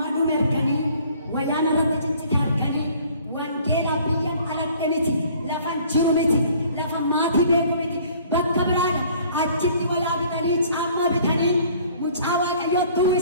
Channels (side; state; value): both; inverted; correlation -0.55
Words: dhume arganii wayyaan irratti ciccite arganii wangeelaa biyya aladhe miti lafan jiru miti lafa maatii beeku miti bakka biraadha achitti walaa bitanii caammaa bitanii mucaa Waaqayyootti